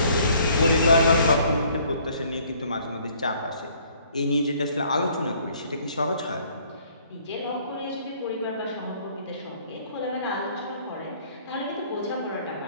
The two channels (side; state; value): both; inverted; correlation -0.60